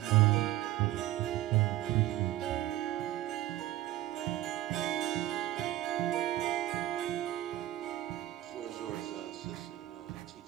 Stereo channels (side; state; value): left; quieter; 14.5 dB